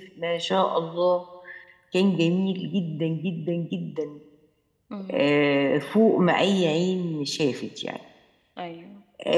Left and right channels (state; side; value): identical; both; correlation 1.00